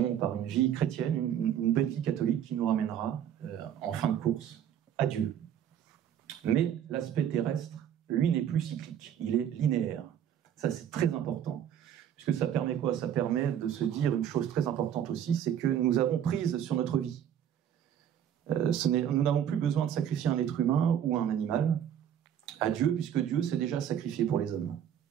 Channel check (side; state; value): left; quieter; 9.7 dB